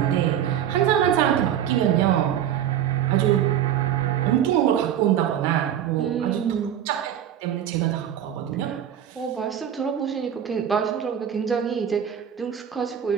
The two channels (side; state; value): left; quieter; 9.9 dB